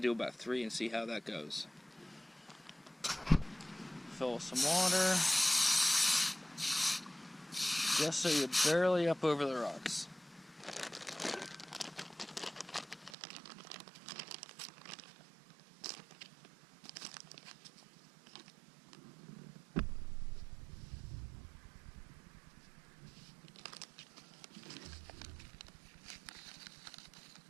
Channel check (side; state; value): left; drops out; at 13.2 s